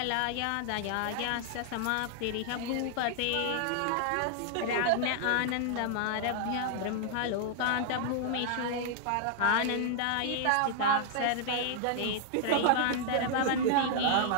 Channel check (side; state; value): both; different; correlation -0.01